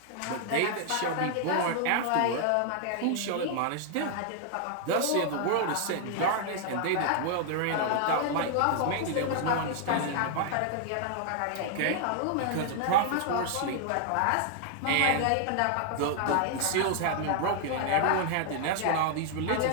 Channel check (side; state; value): both; different; correlation 0.00